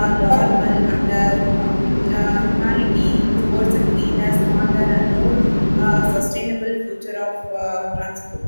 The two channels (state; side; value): inverted; both; correlation -1.00